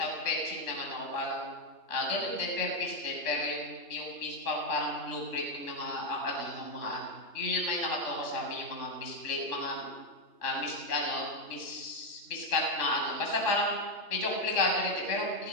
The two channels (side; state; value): right; late; 3.5 ms